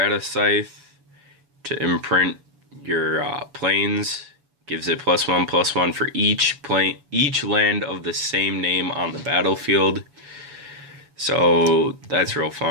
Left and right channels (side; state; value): left; late; 7.0 ms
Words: Scythe to imprint your plains. Gives it +1/+1 for each land of the same name on the battlefield. So that's real